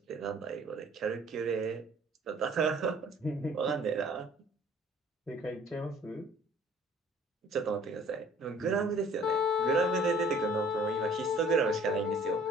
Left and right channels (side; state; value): both; normal; correlation 0.54